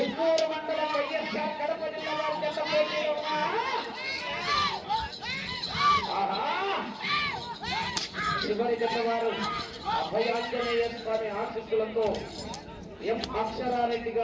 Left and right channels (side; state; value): both; identical; correlation 1.00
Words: మండలం వైఎస్ఆర్ కడప జిల్లా వారి జత పోటీలో చివరి జత వారు అభయాంజనేయ స్వామి ఆశీస్సులతో ఎం అక్షరారెడ్డి